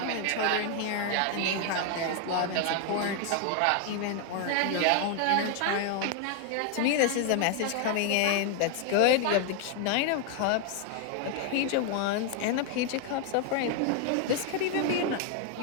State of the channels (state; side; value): different; both; correlation 0.00